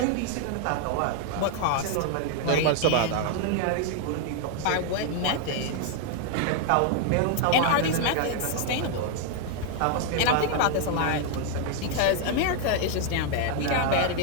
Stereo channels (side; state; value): both; different; correlation 0.00